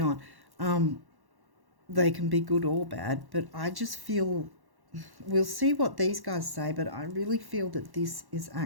They can be good or bad, but I just feel, we'll see what these guys say, but I really feel that this is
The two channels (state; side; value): late; left; 1.1 ms